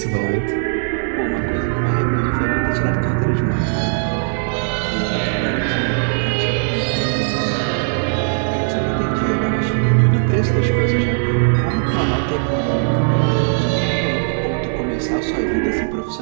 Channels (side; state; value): left; silent; digital silence